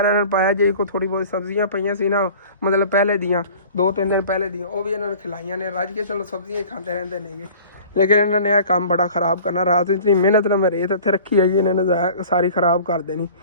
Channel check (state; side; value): inverted; both; correlation -0.45